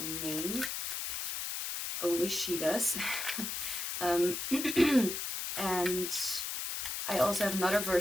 name, only she does. And I also have another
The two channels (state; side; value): noise; left; hiss, 3 dB below the sound